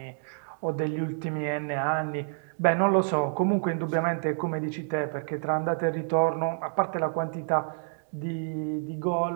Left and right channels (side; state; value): left; silent; digital silence